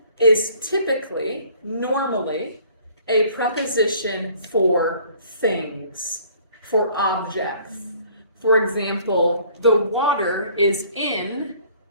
is typically, normally, a preposition for things, for objects. For example, the water is in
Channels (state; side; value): inverted; both; correlation -0.56